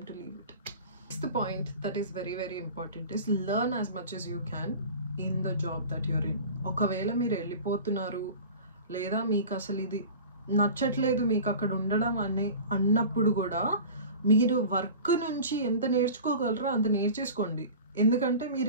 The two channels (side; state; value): both; inverted; correlation -0.38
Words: to leave it. Next point that is very important is learn as much as you can in the job that you're in. ఒకవేళ మీరు వెళ్ళిపోతున్నారు లేదా మీకు అసలు ఇది నచ్చట్లేదు మీకు అక్కడ ఉండడం అన్నప్పుడు కూడా మీరు వర్క్ నుంచి ఎంత నేర్చుకోగలరో అంత నేర్చేసుకోండి. ఎందుకంటే